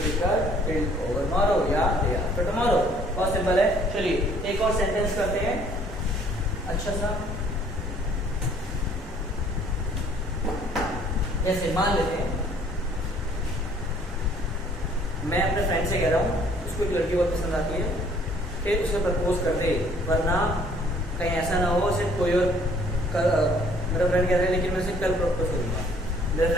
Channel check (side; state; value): both; normal; correlation 0.59